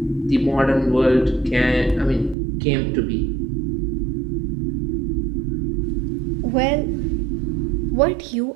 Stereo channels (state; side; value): drops out; left; at 2.4 s